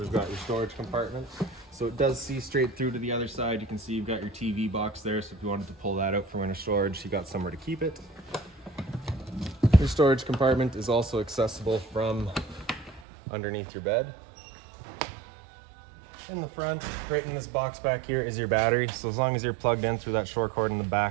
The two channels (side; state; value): left; drops out; at 13.1 s